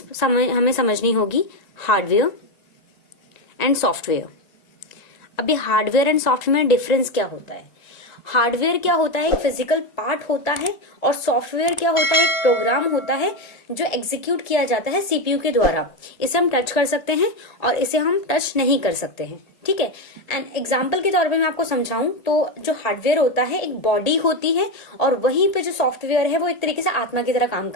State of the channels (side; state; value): right; late; 1.9 ms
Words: हमें समझनी होगी, हार्डवेयर एंड सॉफ्टवेयर। अब ये हार्डवेयर एंड सॉफ्टवेयर में डिफरेंस क्या होता है। हार्डवेयर क्या होता है, एक फिजिकल पार्ट होता है, और सॉफ्टवेयर क्या होता है, एक प्रोग्राम होता है जो एग्जीक्यूट किया जाता है सीपीयू के द्वारा। इसे हम टच कर सकते हैं और इसे हम टच नहीं कर सकते हैं, ठीक है। एंड एग्जाम्पल के तौर पे मैं आपको समझाऊं तो जो हार्डवेयर होता है एक बॉडी होती है, और वहीं पे जो सॉफ्टवेयर है वो एक तरीके से आत्मा की तरह काम